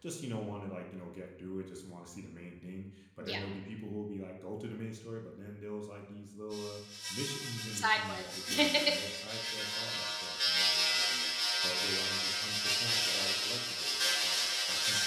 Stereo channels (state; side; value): identical; both; correlation 1.00